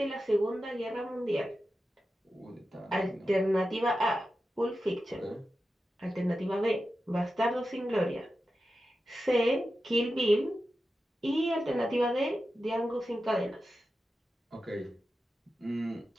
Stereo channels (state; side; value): normal; both; correlation 0.91